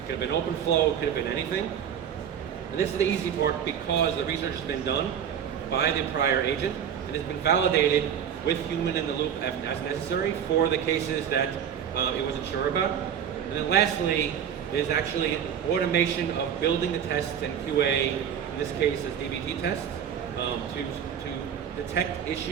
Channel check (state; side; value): quieter; left; 8.6 dB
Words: could have been OpenFlow, it could have been anything. And this is the easy part because the research has been done by the prior agent and has been validated with human in the loop as necessary for the cases that it wasn't sure about. And then lastly, there's actually an automation of building the tests and QA, in this case as dbt tests, to detect